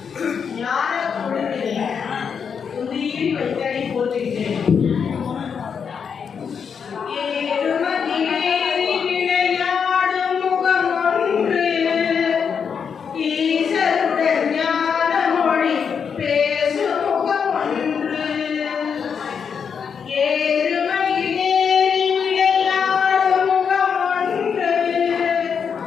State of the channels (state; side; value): quieter; right; 6.7 dB